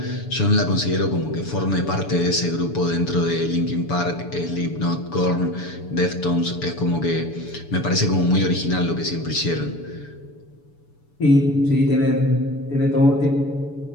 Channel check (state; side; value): late; right; 7.0 ms